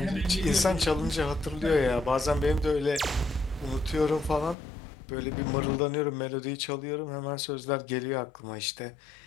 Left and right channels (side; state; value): right; drops out; at 4.5 s